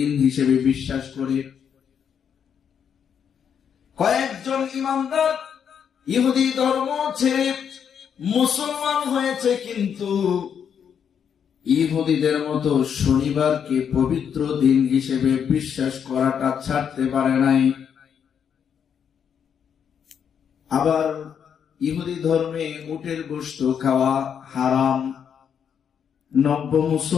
হিসেবে বিশ্বাস করে। কয়েকজন ইমানদার ইহুদি ধর্ম ছেড়ে মুসলমান হয়েছে, কিন্তু ইহুদিদের মতো শনিবারকে পবিত্র দিন হিসেবে বিশ্বাস করাটা ছাড়তে পারে নাই। আবার ইহুদি ধর্মে উটের গোশত খাওয়া হারাম। নব্য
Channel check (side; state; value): right; quieter; 7.8 dB